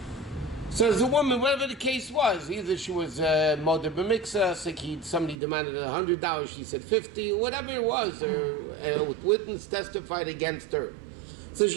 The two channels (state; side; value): drops out; left; at 5.4 s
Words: So as a woman, whatever the case was, either she was Moder B'Miksa, somebody demanded $100, she said $50, whatever it was, or witness testified against her. So